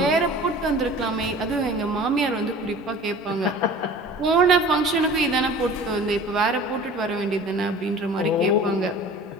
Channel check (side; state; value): both; normal; correlation 0.43